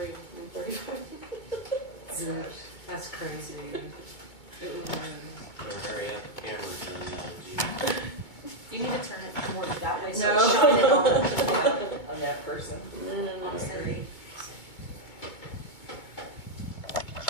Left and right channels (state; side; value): late; right; 2.2 ms